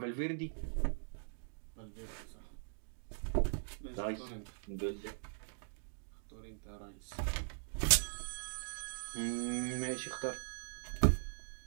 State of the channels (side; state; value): left; silent; digital silence